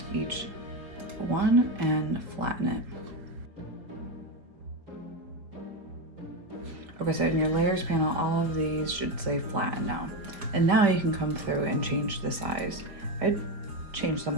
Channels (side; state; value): left; late; 4.5 ms